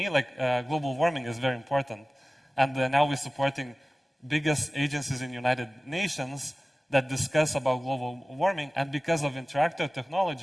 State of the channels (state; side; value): normal; both; correlation 0.97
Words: global warming is very important. And now we're supporting biggest agencies in United Nations that discuss about global warming. And because of Interactio